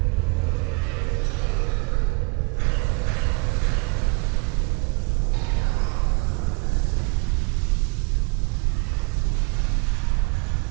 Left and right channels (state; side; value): quieter; left; 32.3 dB